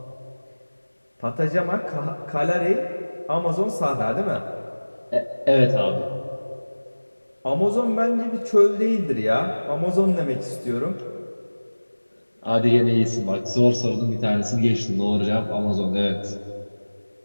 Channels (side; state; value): both; inverted; correlation -1.00